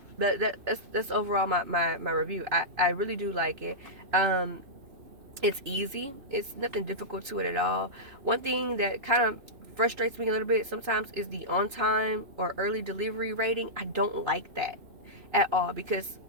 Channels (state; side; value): late; left; 2.9 ms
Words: That's overall my review. I really do like it. It's easy. It's nothing difficult to it at all. One thing that kind of frustrates me a little bit sometimes is the on time or early delivery rating. I don't like that at all, because